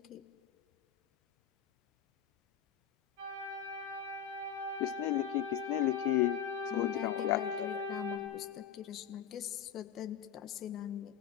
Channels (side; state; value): right; quieter; 9.1 dB